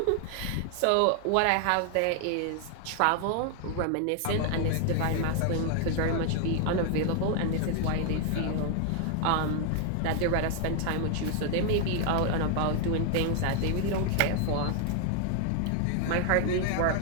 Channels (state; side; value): different; both; correlation 0.00